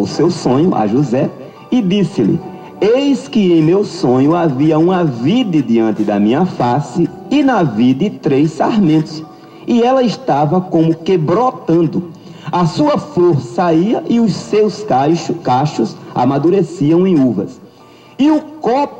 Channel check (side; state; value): both; identical; correlation 1.00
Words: seu sonho a José e disse-lhe: eis que em meu sonho havia uma vide diante da minha face, e na vide 3 sarmentos, e ela estava como que brotando. A sua flor saía e os seus cachos amadureciam em uvas. E o